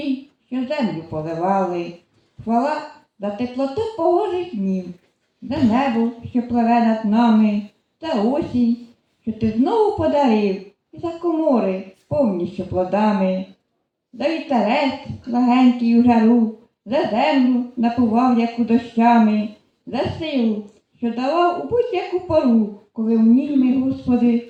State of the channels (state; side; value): identical; both; correlation 1.00